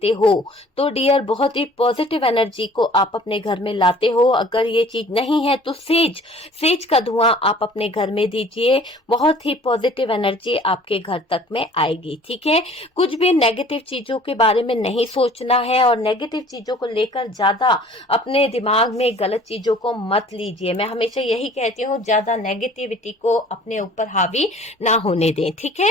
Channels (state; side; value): normal; both; correlation 0.51